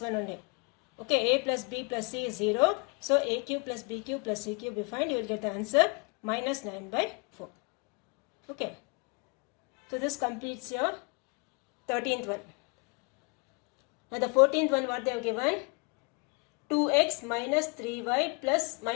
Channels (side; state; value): right; quieter; 32.4 dB